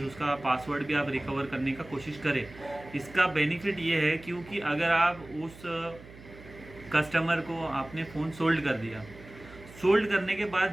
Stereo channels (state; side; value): noise; right; hum, 19 dB below the sound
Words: उसका पासवर्ड भी आप रिकवर करने का कोशिश करें। इसका बेनिफिट ये है क्योंकि अगर आप उस कस्टमर को आपने फ़ोन सोल्ड कर दिया, सोल्ड करने के